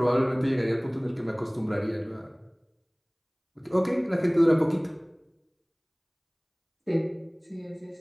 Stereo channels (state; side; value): identical; both; correlation 1.00